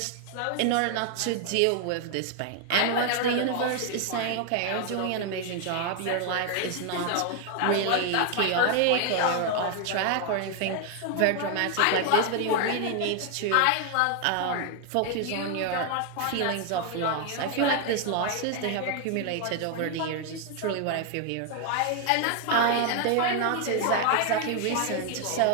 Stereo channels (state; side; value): different; both; correlation 0.00